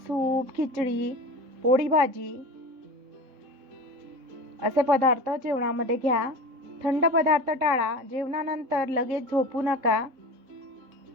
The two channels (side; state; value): left; late; 3.9 ms